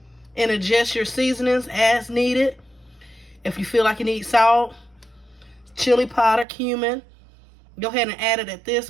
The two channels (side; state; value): left; drops out; at 6.5 s